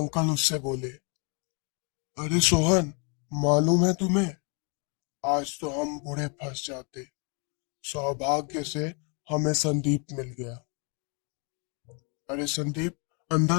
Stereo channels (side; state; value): right; quieter; 35.9 dB